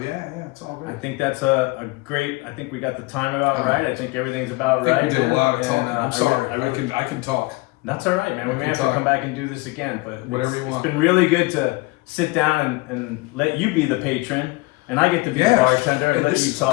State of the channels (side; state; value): right; quieter; 22.9 dB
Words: yeah, it's all good. I think that's a great. I think we got the time about right. I think everything's about right. I think we did a lot of talking. I'm sorry. I can talk. That's all right, man. We may have to come back and do this again, but whatever you want. It's been really good to sit down and let you be the patron. And I get to be the bartender and let you